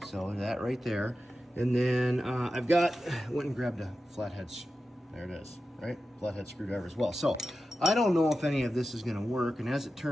So that right there. And then went and grabbed a flathead, there it is, right? Flathead screwdriver as well. So I don't know if any of this is gonna work, and as it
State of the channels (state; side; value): normal; both; correlation 0.92